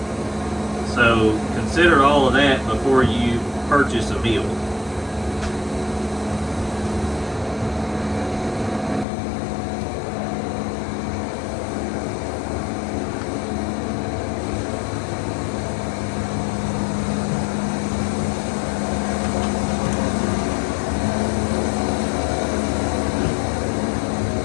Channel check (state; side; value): drops out; right; at 9.1 s